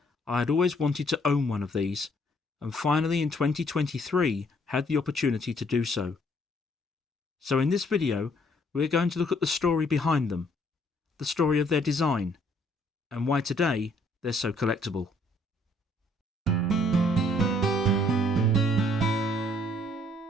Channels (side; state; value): both; normal; correlation 0.65